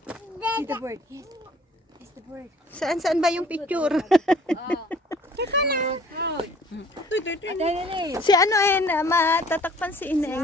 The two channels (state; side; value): normal; both; correlation 0.54